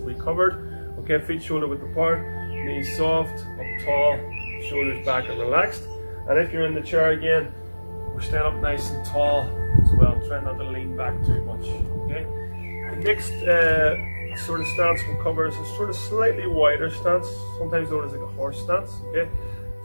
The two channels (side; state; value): both; inverted; correlation -1.00